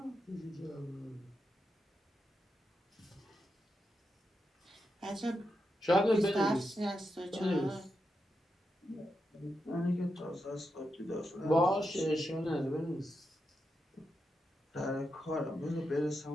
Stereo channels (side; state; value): both; normal; correlation 0.86